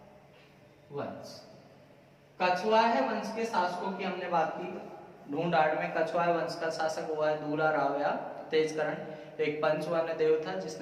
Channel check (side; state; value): both; identical; correlation 1.00